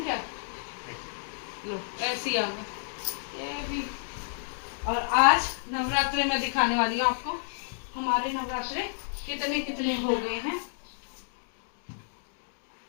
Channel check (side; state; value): right; silent; digital silence